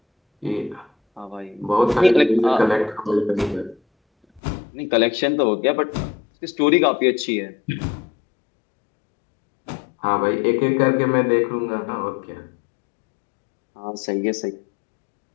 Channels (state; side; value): drops out; right; at 4.4 s